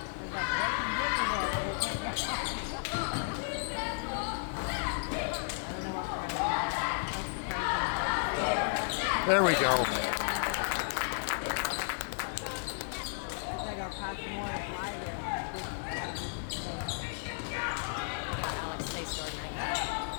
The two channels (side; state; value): right; silent; digital silence